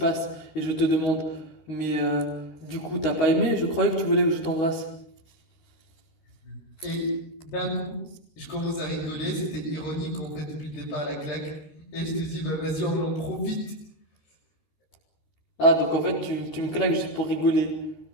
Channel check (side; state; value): right; late; 13 ms